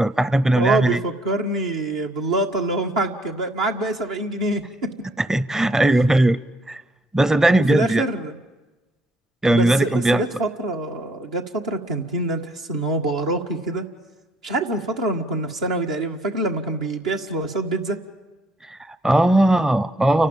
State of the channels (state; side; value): normal; both; correlation 0.69